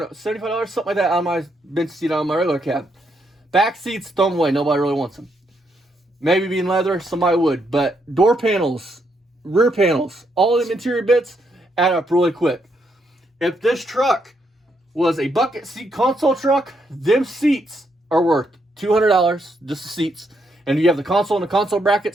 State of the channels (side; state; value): both; normal; correlation 0.77